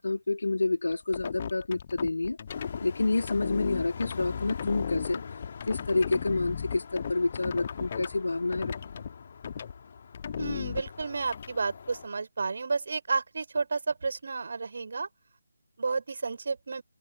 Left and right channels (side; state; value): both; inverted; correlation -0.93